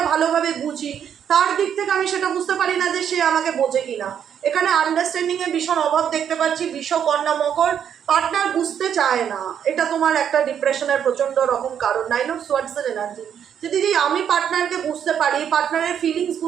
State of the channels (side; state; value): left; quieter; 8.7 dB